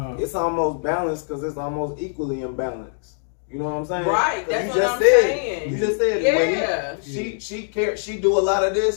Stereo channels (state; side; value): silent; right; 64 dB below the other